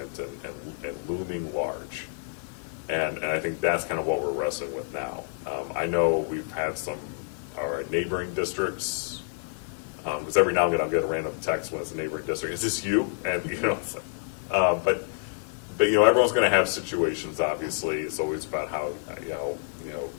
and looming large. And I think that's kind of what we're wrestling with now. I know we've had our neighboring districts, because every now and then I'll get a random text when it's a neighboring district. Is this you? And, it's like, but everyone's going to have situations, obviously. It's always about how,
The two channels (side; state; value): right; silent; digital silence